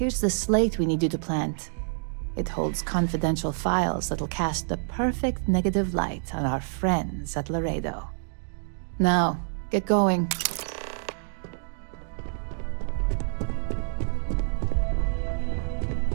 the slate we need you to plant. It holds confidential files that'll cast the perfect negative light on our friends at Laredo. Now, get going.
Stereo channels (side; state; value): left; silent; digital silence